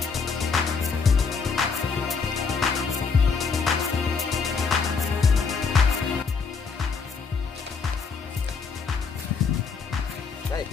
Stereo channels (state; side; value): quieter; right; 5.2 dB